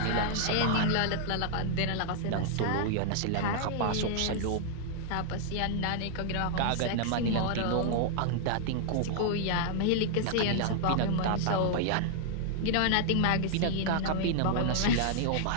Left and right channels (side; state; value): both; different; correlation -0.01